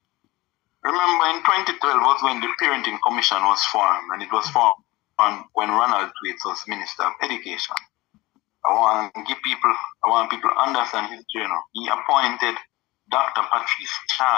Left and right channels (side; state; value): right; quieter; 20.4 dB